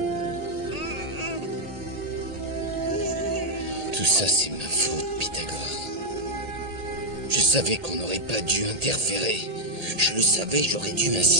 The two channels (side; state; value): left; late; 1.7 ms